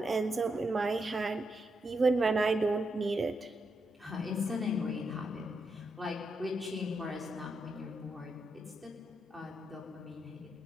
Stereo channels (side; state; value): both; normal; correlation 0.83